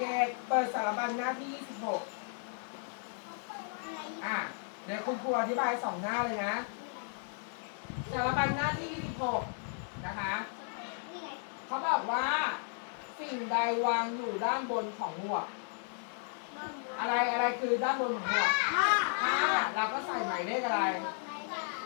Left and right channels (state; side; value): silent; right; 55 dB below the other